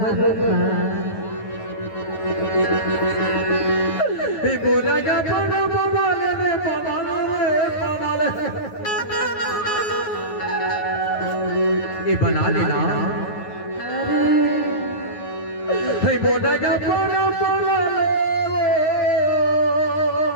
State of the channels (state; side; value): late; right; 9.5 ms